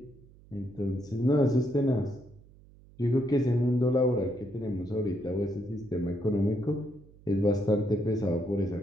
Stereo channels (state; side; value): noise; right; hum, 24 dB below the sound